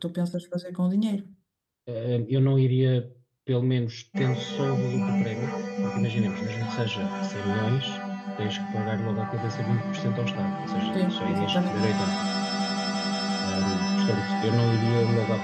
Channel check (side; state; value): both; identical; correlation 1.00